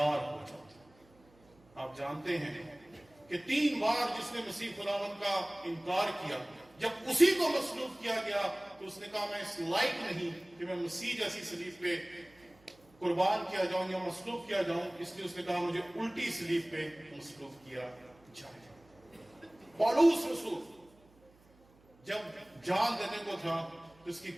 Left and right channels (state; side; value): noise; right; hum, 29 dB below the sound